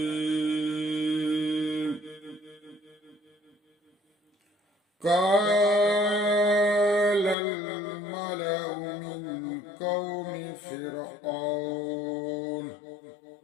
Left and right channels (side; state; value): right; drops out; at 7.4 s